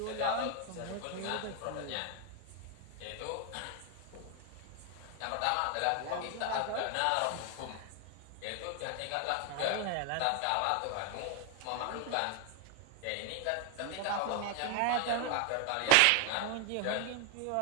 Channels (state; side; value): different; both; correlation 0.01